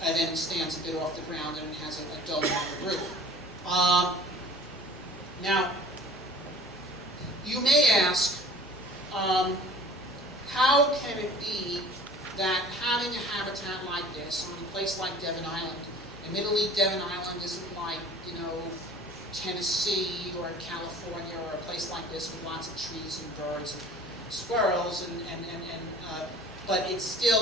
and then stands a bit off the ground, and it has a dome on the roof. Now, you may ask, how can it be that having a habitat like this on a place like Devon Island, admittedly Devon Island isn't like, Tennessee or California or a place like this with lots of trees and birds and squirrels, but it's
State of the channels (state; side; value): normal; both; correlation 0.45